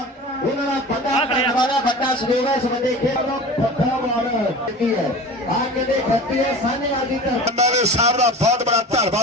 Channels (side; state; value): both; normal; correlation 0.36